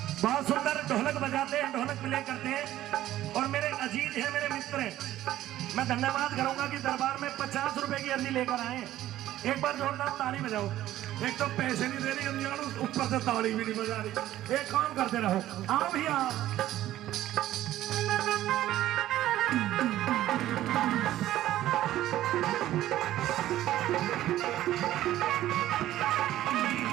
बहुत सुंदर ढोलक बजाते हैं, ढोलक प्ले करते हैं और मेरे अजीज हैं, मेरे मित्र हैं। मैं धन्यवाद करूंगा कि दरबार में 50 रुपए की अर्जी लेकर आए। एक बार जोरदार ताली बजाओ। एक तो पैसे नहीं दे रही अंजान, ऊपर से ताली भी नहीं बजा रही। एक काम करते रहो, आओ भैया।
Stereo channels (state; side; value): quieter; left; 13.8 dB